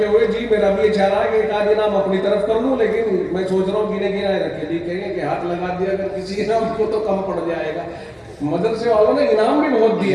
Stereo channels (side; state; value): both; identical; correlation 1.00